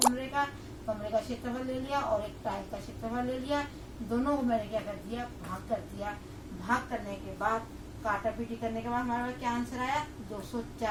कमरे का क्षेत्रफल ले लिया और एक टाइल का क्षेत्रफल ले लिया, दोनों को मैंने क्या कर दिया, भाग कर दिया। भाग करने के बाद काटा पीटी करने के बाद हमारे पास क्या आंसर आया,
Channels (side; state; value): both; identical; correlation 1.00